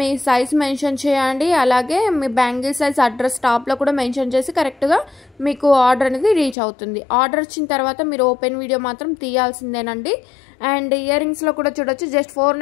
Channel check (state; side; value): drops out; right; at 6.6 s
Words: సైజ్ మెన్షన్ చేయండి. అలాగే మీ బ్యాంగిల్ సైజ్ అడ్రస్ టాప్లో కూడా మెన్షన్ చేసి కరెక్ట్గా మీకు ఆర్డర్ అనేది రీచ్ అవుతుంది. ఆర్డర్ వచ్చిన తర్వాత మీరు ఓపెన్ వీడియో మాత్రం తీయాల్సిందేనండి. అండ్ ఇయర్ రింగ్స్లో కూడా చూడొచ్చు జస్ట్